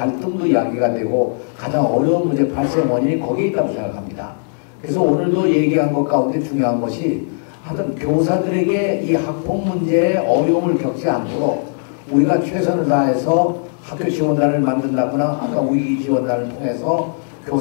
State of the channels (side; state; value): right; silent; 67 dB below the other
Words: 이야기가 되고 가장 어려운 문제 발생 원인이 거기에 있다고 생각합니다. 그래서 오늘도 얘기한 것 가운데 중요한 것이 하여튼 교사들에게 이 학폭 문제에 어려움을 겪지 않도록 우리가 최선을 다해서 학교 지원단을 만든다거나 아까 위기 지원단을 통해서